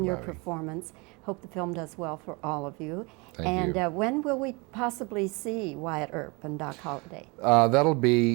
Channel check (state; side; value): quieter; left; 28.0 dB